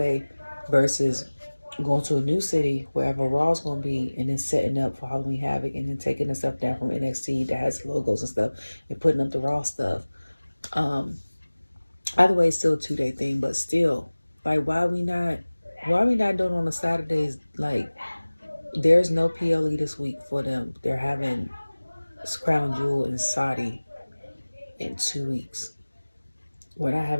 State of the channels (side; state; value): both; inverted; correlation -1.00